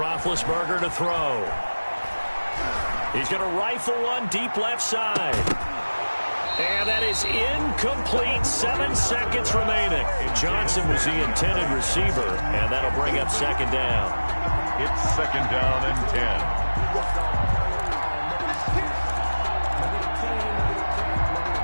to throw. He's going to rifle one deep left side. And that is incomplete. 7 seconds remaining. Johnson was the intended receiver, and that'll bring up 2nd down. It's 2nd down and 10.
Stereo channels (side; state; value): both; inverted; correlation -1.00